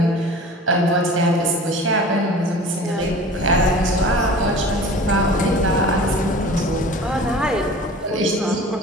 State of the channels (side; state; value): both; normal; correlation 0.41